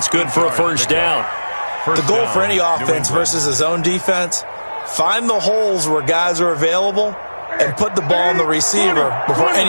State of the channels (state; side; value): inverted; both; correlation -1.00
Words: good for a 1st down. The goal for any offense versus his own defense, find the holes where guys are available and put the ball on the receiver before